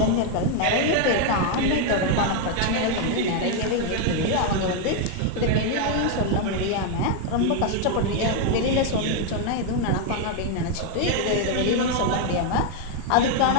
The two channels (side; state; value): both; different; correlation 0.01